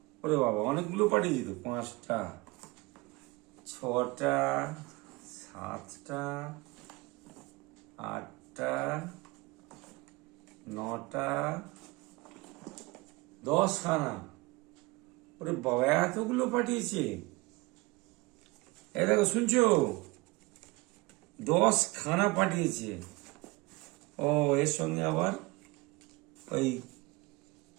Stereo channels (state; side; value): quieter; left; 23.9 dB